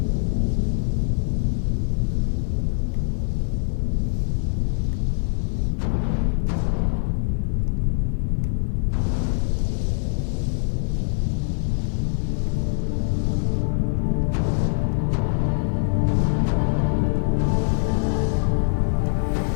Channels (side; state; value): right; silent; digital silence